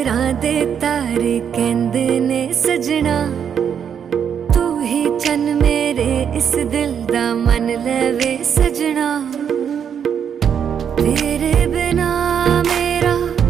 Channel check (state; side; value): quieter; left; 8.0 dB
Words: दे तारे कहंदे ने सजना, तू ही चन मेरे इस दिल